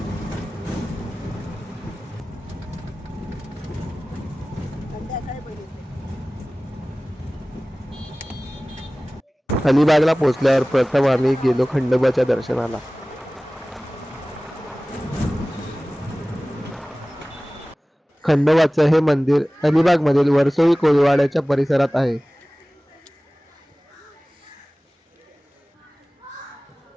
अलिबागला पोहोचल्यावर प्रथम आम्ही गेलो खंडोबाच्या दर्शनाला. खंडोबाचं हे मंदिर अलिबागमधील वर्सोळी कोळीवाड्याच्या परिसरात आहे.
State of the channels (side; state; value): both; normal; correlation 0.98